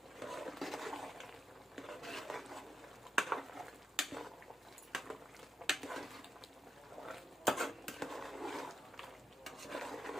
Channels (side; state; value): both; normal; correlation 0.86